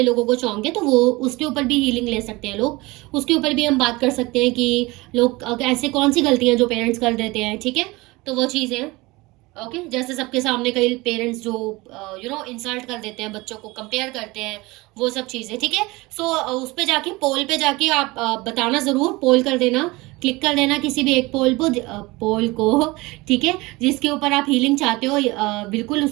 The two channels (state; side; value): quieter; left; 22.3 dB